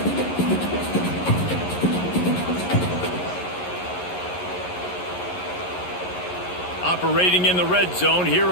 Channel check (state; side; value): late; right; 11 ms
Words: Operating in the red zone here